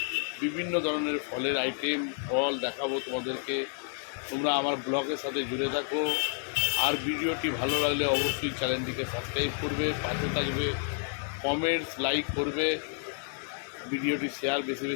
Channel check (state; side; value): silent; right; 58 dB below the other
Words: বিভিন্ন ধরনের ফলের আইটেম ফল দেখাবো তোমাদেরকে। তোমরা আমার ব্লগের সাথে জুড়ে থাকো। আর ভিডিওটি ভালো লাগলে অবশ্যই চ্যানেলটিকে সাবস্ক্রাইব করবে, পাশে থাকবে, কমেন্টস লাইক করবে, ভিডিওটি শেয়ার বেশি